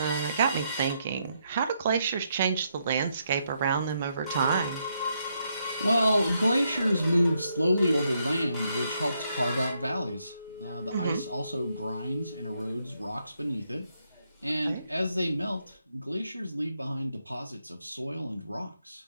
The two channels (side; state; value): both; inverted; correlation -0.78